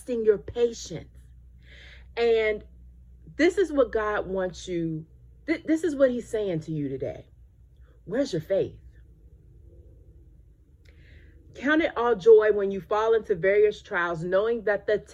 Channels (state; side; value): identical; both; correlation 1.00